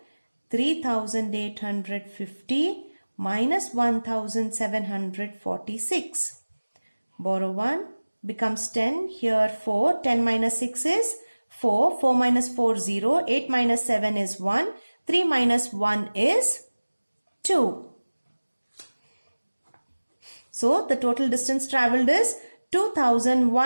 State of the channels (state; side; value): inverted; both; correlation -1.00